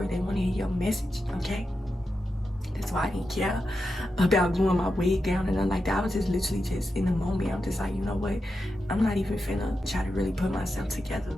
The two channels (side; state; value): both; normal; correlation 0.88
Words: they want to hear your message. Okay, that's why I didn't care about gluing my wig down and nothing like that. I was just literally just in the moment. I'm just like, you know what, I'm not even finna try to really put myself together